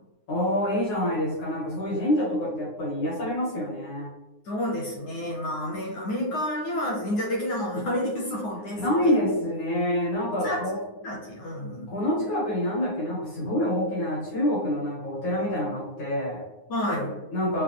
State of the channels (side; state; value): right; late; 9.6 ms